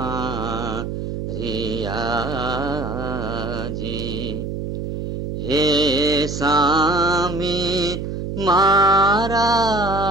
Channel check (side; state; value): right; noise; hum, 5 dB below the sound